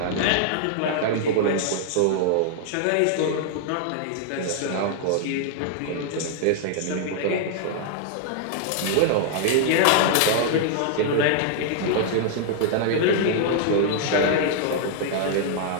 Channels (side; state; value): both; different; correlation -0.01